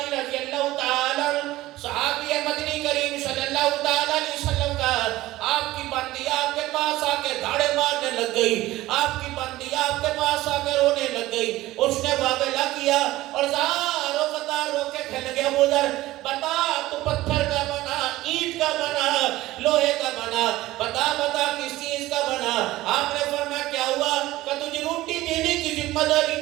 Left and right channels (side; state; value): left; quieter; 17.0 dB